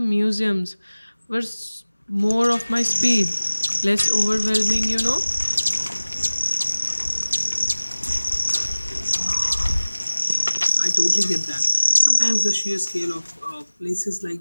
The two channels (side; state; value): both; inverted; correlation -1.00